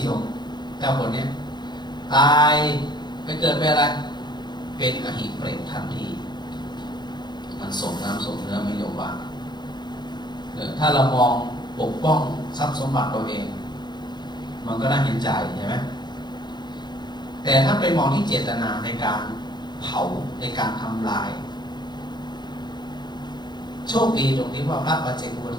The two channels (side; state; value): right; late; 0.21 ms